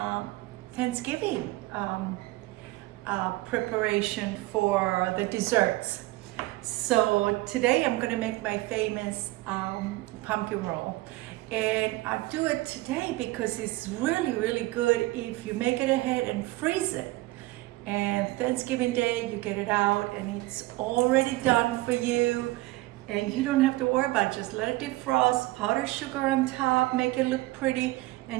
Thanksgiving preparation for the desserts. So today I'm going to make my famous pumpkin roll. And I do it today because it's really good if you make it ahead and freeze it. And Thanksgiving Day, you get it out and it's already done for you. And you don't have to worry about it. Just let it defrost, powdered sugar on top, make it look pretty,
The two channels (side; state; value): left; quieter; 19.6 dB